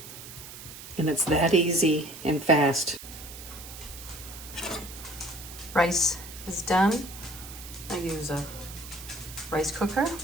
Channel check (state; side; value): noise; right; hiss, 13 dB below the sound